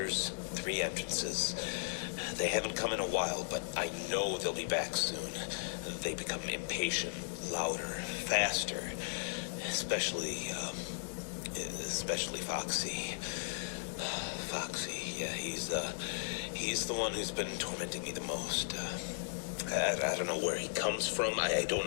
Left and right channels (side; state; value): right; silent; digital silence